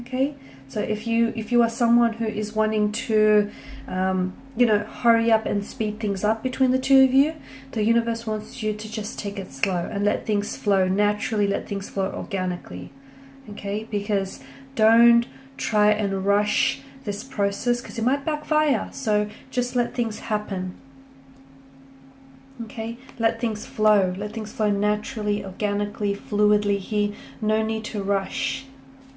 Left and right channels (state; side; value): identical; both; correlation 1.00